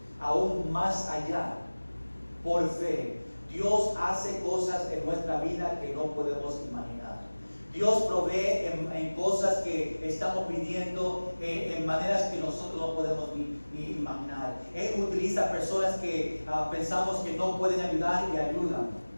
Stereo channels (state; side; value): inverted; both; correlation -1.00